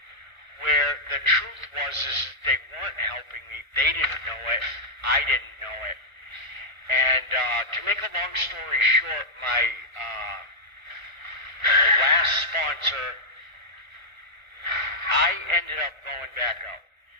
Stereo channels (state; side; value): late; left; 1.1 ms